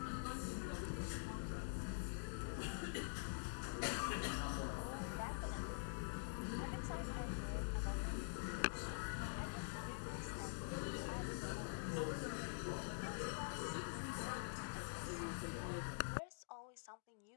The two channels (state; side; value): silent; right; digital silence